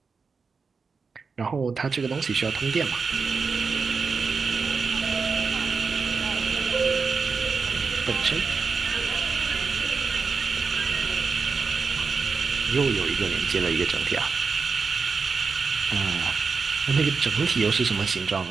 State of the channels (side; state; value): left; quieter; 5.0 dB